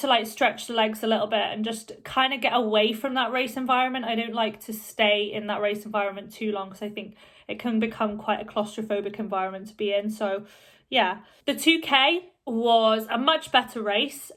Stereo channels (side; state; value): both; identical; correlation 1.00